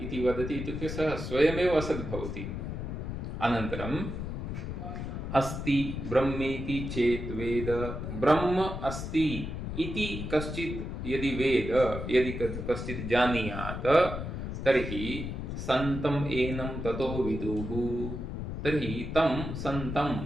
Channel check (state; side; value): noise; left; rumble, 5 dB below the sound